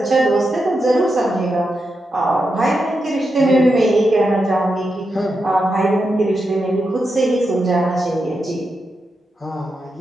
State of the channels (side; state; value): both; normal; correlation 0.87